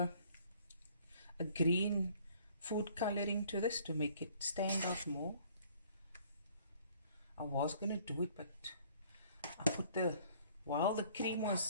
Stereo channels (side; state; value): both; inverted; correlation -0.57